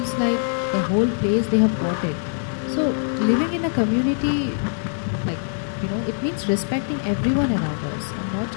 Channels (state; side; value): silent; right; digital silence